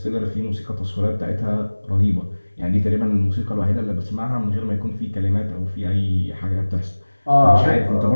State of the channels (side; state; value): both; inverted; correlation -1.00